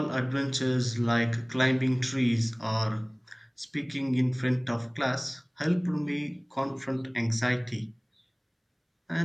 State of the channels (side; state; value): both; identical; correlation 1.00